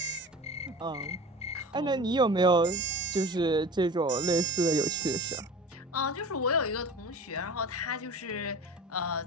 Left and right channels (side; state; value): both; normal; correlation 0.36